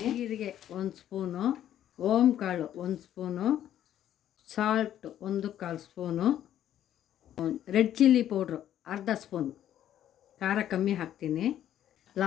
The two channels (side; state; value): right; quieter; 11.3 dB